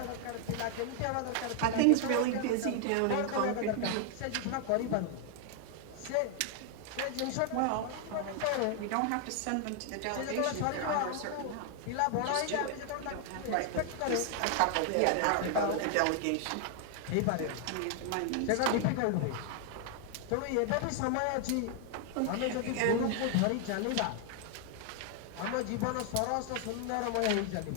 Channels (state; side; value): different; both; correlation 0.00